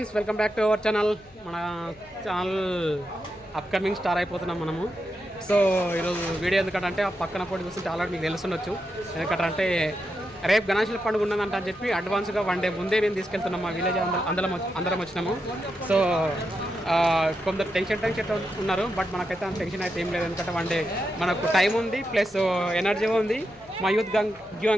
welcome back to our channel. మన channel upcoming star అయిపోతున్నాం మనము. So ఈరోజు వీడియో ఎందుకంటే ఆ పక్కన పోటీ చూస్తుంటే ఆల్రెడీ మీకు తెలుసుండొచ్చు. ఎందుకంటే రేపు గణేశుల పండుగ ఉన్నదంట అని చెప్పి అడ్వాన్స్గా 1 డే ముందే మేము తీసుకెళ్తున్నాం. మా విలేజ్ అందరం వచ్చినాము. సో కొందరు టెన్షన్ ఉన్నారు, బట్ మనకైతే అంత టెన్షన్ అయితే ఏం లేదు. ఎందుకంటే 1 డే మనకు టైం ఉంది, ప్లస్ ఎనర్జీ ఉంది. మా యూత్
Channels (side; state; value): left; noise; hum, 28 dB below the sound